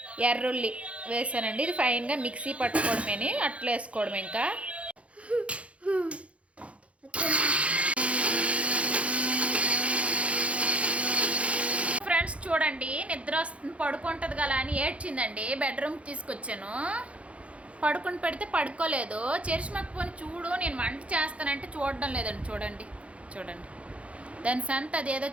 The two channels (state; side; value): late; left; 0.063 ms